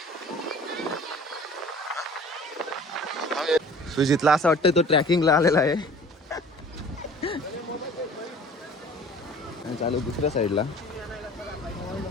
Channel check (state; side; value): normal; both; correlation 0.46